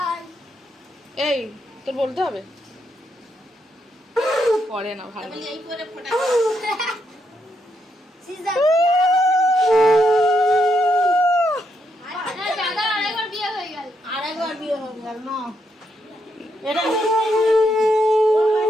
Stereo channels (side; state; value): both; normal; correlation 0.79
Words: এই তোর বলতে হবে পরে না ভালো। আরেকবার বিয়ে হয়ে গেল না এটা